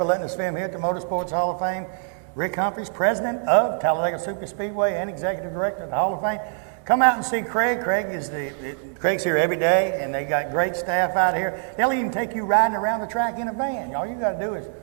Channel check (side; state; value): left; silent; 60 dB below the other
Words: letting us film here at the Motorsports Hall of Fame. Rick Humphreys, president of Talladega Superspeedway and executive director of the Hall of Fame. Come out and see Craig. Craig's here every day, and they got great staff out here. They'll even take you riding around the track in a van. All you got to do is